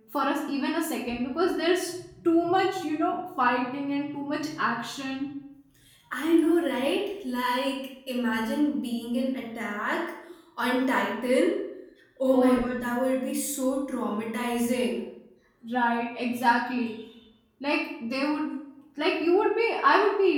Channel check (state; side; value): identical; both; correlation 1.00